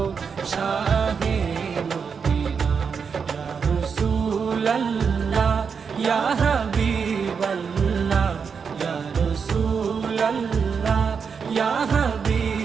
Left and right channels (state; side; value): quieter; left; 6.1 dB